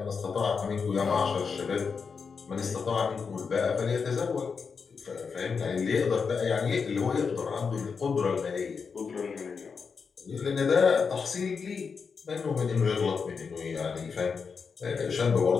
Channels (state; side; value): quieter; right; 5.6 dB